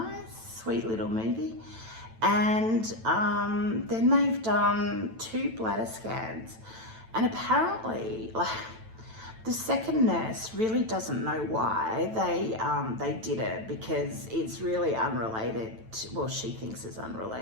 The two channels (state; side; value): late; left; 9.0 ms